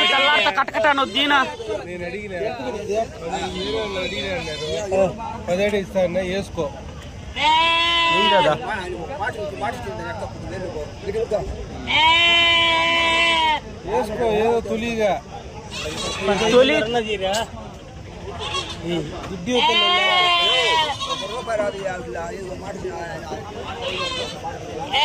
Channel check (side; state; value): both; identical; correlation 1.00